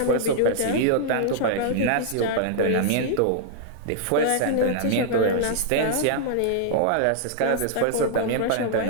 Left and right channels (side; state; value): both; different; correlation -0.01